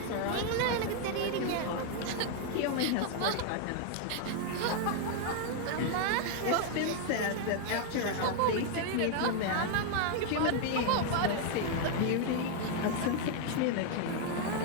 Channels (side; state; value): both; different; correlation 0.00